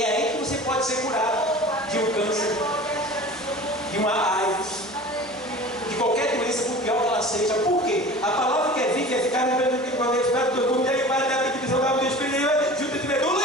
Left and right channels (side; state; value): both; normal; correlation 0.39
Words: aí que você pode ser curado de um câncer, de uma AIDS, de qualquer doença, por pior que ela seja. Por quê? A palavra que é viva e eficaz, junto de